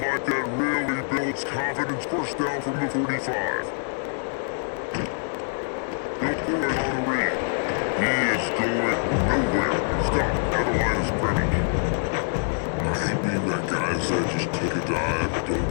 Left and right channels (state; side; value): silent; right; digital silence